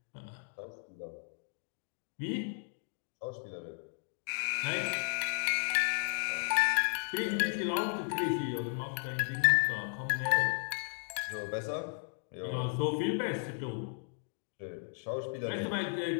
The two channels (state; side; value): silent; right; 55 dB below the other